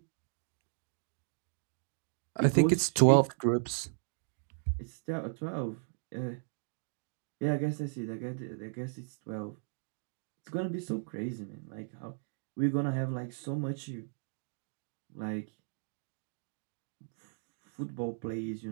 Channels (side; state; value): left; silent; digital silence